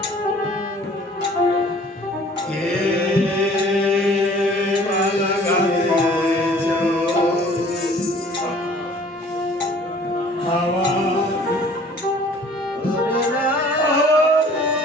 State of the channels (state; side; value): normal; both; correlation 0.52